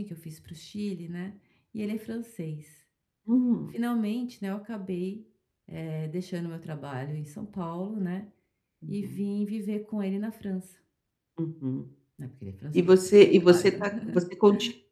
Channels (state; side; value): identical; both; correlation 1.00